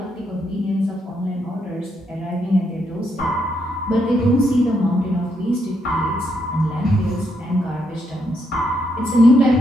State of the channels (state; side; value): normal; both; correlation 0.77